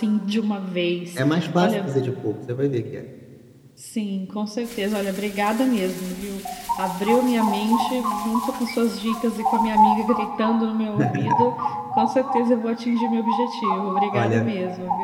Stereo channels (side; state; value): both; identical; correlation 1.00